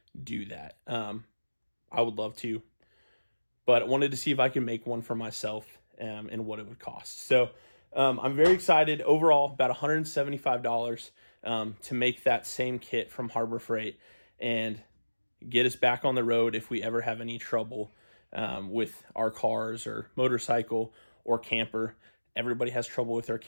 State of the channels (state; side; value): inverted; both; correlation -1.00